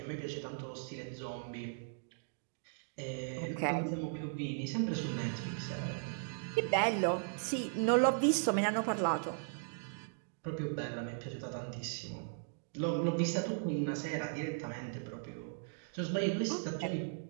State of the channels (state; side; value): silent; left; digital silence